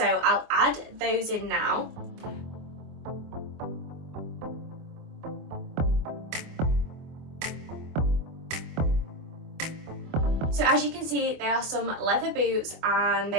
I'll add those in now. So as you can see, they are some leather boots and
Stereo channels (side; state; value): left; late; 24 ms